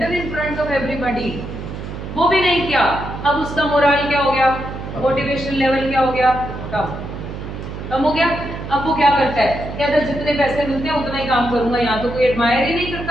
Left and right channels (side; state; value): right; noise; hum, 8 dB below the sound